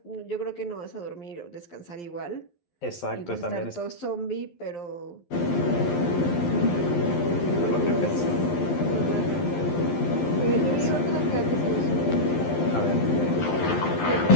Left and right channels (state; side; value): late; right; 12 ms